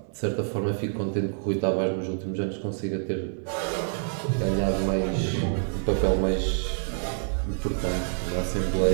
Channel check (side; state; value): left; silent; digital silence